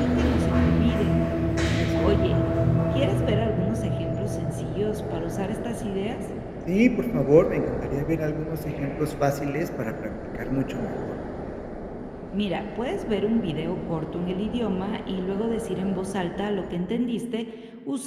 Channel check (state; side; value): identical; both; correlation 1.00